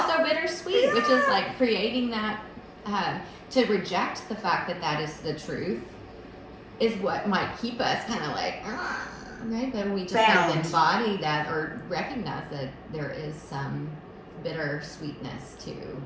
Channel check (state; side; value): identical; both; correlation 1.00